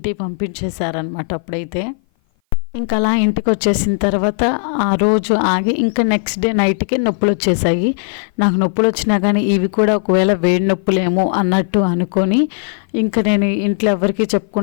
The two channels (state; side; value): silent; right; 57 dB below the other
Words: పంపించేశారనమాట. అప్పుడైతే ఇంకా అలా ఇంటికి వచ్చేసిన తర్వాత ఆ రోజు ఆగి ఇంకా నెక్స్ట్ డే నైట్కి నొప్పులు వచ్చేసాయి. నాకు నొప్పులు వచ్చినా కానీ ఇవి కూడా ఒకవేళ వేడి నొప్పులేమో అన్నట్టు అనుకొని ఇంకా నేను ఇంట్లో ఎవరికి